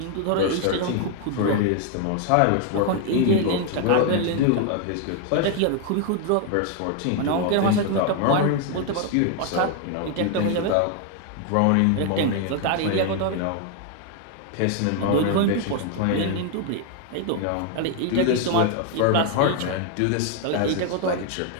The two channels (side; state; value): both; different; correlation 0.01